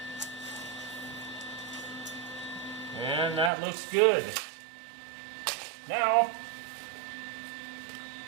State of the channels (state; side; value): drops out; left; at 3.5 s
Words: And that looks good. Now,